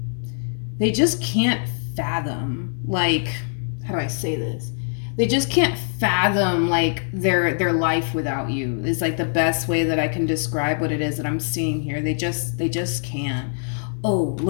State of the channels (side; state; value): right; silent; digital silence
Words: they just can't fathom, like, how do I say this? They just can't fathom like their life without you. Is like the best way that I can describe what it is that I'm seeing here. They just can't. Oh,